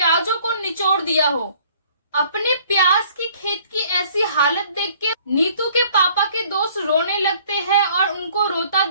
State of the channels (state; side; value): inverted; both; correlation -0.57